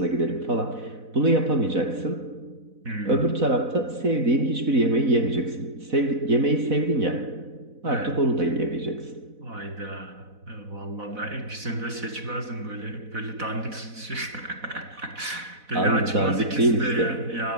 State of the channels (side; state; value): left; late; 4.0 ms